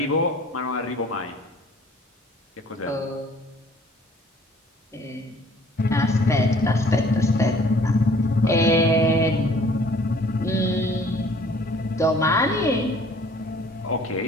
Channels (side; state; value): both; normal; correlation 0.55